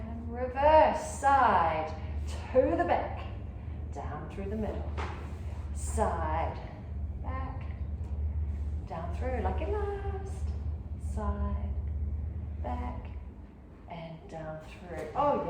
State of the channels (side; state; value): both; identical; correlation 1.00